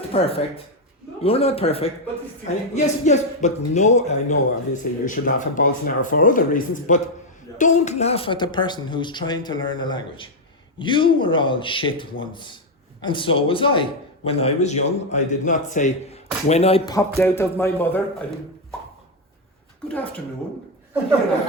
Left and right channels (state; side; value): normal; both; correlation 0.04